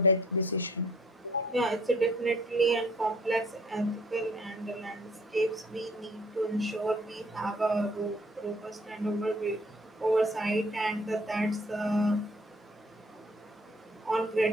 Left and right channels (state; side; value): normal; both; correlation 0.58